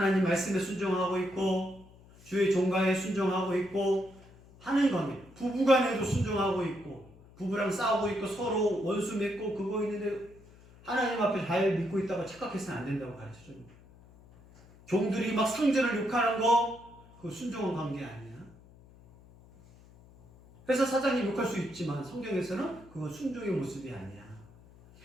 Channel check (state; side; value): noise; left; hum, 24 dB below the sound